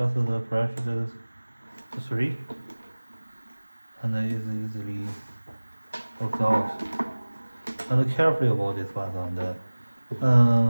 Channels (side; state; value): both; inverted; correlation -1.00